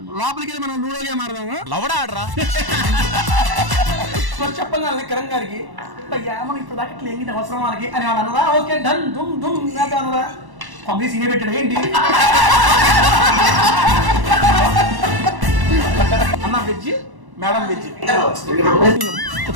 లోపలికి వెళ్ళి మనం లూడో గేమ్ ఆడదాము. లవడా ఆడరా చెప్పగానే కిరణ్ గారికి అయ్యా మనం ఇప్పుడు దాకా ఇట్లా ఏంటి అవసరం మనకి అని అన్నదా. ఓకే డన్ దుమ్ దుమ్ అన్నదా. పంపిణీ సీనే పెట్టాడు ఏంటి అన్న వెజ్ మేడం వెజ్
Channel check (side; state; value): left; late; 1.1 ms